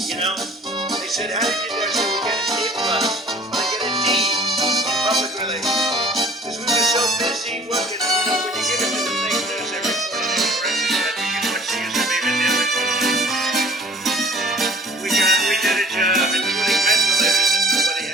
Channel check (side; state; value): both; normal; correlation 0.51